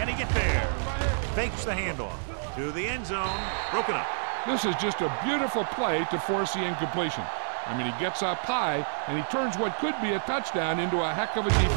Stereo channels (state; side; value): silent; left; digital silence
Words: he get there? Fakes the handoff to the end zone. Broken up. This is just a beautiful play to force the incompletion. I mean, he gets up high, and he turns what could be a touchdown into a heck of a